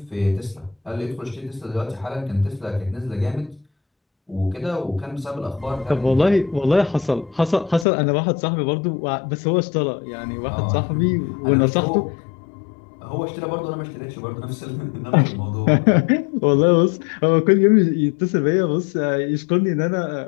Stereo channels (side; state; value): right; drops out; at 7.9 s